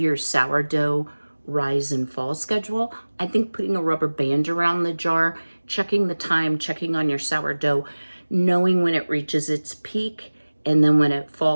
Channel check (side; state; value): both; inverted; correlation -1.00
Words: sourdough rise and fall schedule. I think putting a rubber band around the jar, checking the time, checking on your sourdough, knowing when it reaches its peak, and then when it